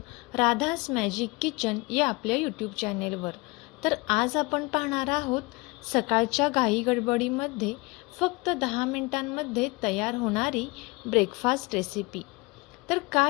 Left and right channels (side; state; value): right; quieter; 25.5 dB